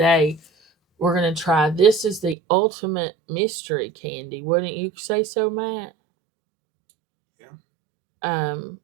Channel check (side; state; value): left; drops out; at 2.4 s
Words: we're going to try. This is the ultimate mystery candy. Wouldn't you say so, Matt? Yeah.